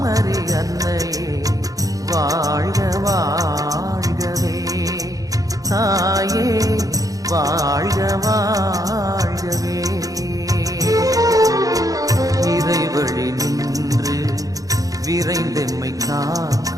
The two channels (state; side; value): late; left; 0.17 ms